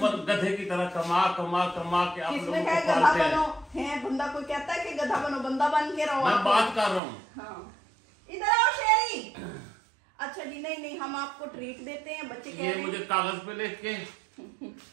गधे की तरह कमा के आप लोगों को गधा बनो है, बंदा कोई कहता है कि गधा बनो, बंदा बन के रहो। मैं बात कर रहा हूँ। हाँ इधर आओ शेरी। अच्छा जी, नहीं हम आपको ट्रीट देते हैं, बच्चे कह रहे हैं। मुझे कागज पे लिख के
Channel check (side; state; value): left; drops out; at 7.0 s